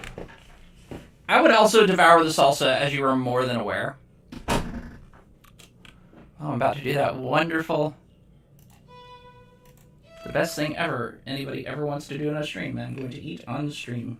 I would also devour the salsa, as you are more than aware. Oh, I'm about to do that wonderful... The best thing ever anybody ever wants to do on a stream. I'm going to eat on the stream.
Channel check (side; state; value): both; identical; correlation 1.00